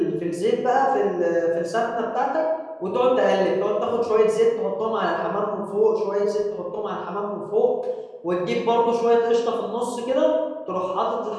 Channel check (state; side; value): identical; both; correlation 1.00